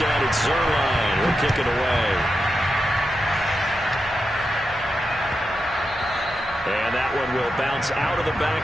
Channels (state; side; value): normal; both; correlation 0.88